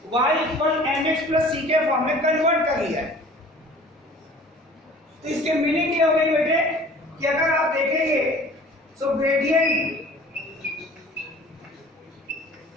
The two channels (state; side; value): normal; both; correlation 0.47